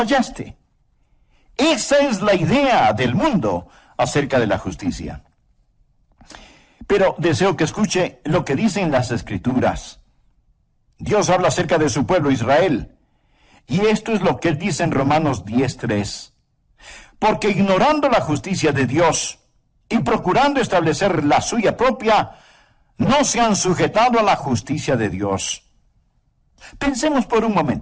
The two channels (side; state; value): both; identical; correlation 1.00